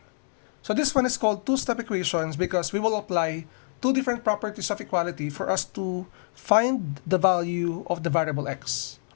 So this one is called two-step equations because we will apply two different properties of equality for us to find the value of the variable x,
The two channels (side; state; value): right; silent; digital silence